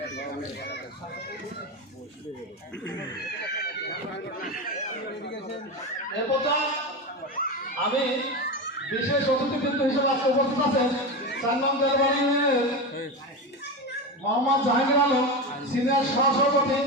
এরপর আমি বিশেষ অতিথিবৃন্দ হিসেবে আজকে উপস্থিত আছেন 4 নং দেলবাড়ি মোহাম্মদ জাহাঙ্গীর আলম সিনিয়র সহসভাপতি।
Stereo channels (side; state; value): both; normal; correlation 0.20